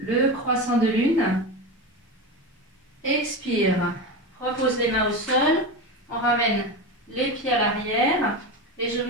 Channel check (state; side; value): normal; both; correlation 0.21